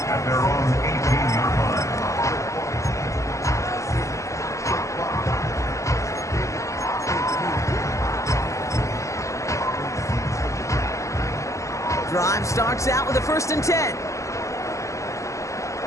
at their own 18-yard line. Drive starts out with a 1st and 10.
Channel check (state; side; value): late; right; 0.15 ms